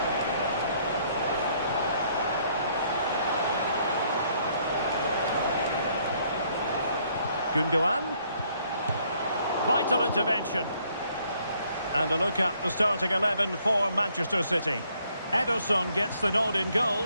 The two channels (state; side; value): inverted; both; correlation -0.67